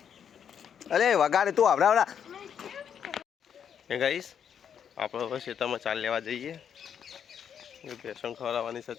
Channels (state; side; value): quieter; right; 8.2 dB